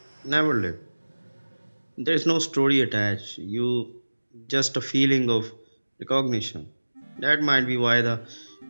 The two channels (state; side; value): inverted; both; correlation -1.00